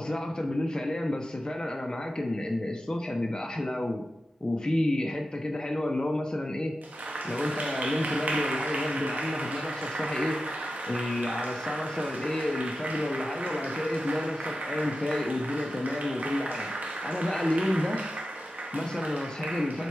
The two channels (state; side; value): normal; both; correlation 0.92